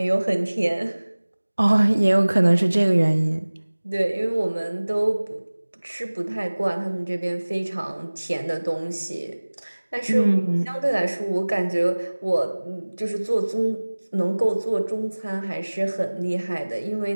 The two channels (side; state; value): both; inverted; correlation -1.00